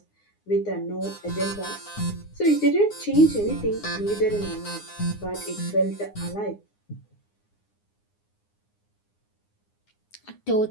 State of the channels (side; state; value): right; late; 9.7 ms